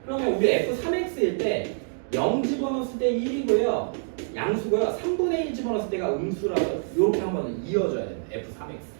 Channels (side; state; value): left; silent; digital silence